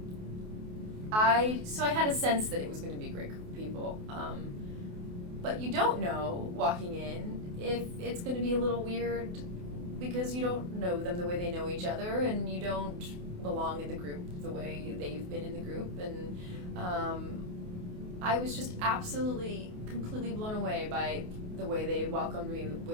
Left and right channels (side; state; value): left; late; 28 ms